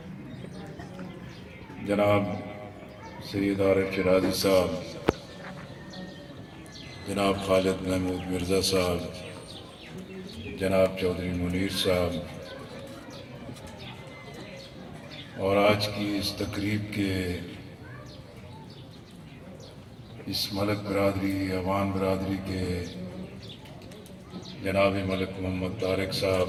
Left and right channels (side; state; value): both; identical; correlation 1.00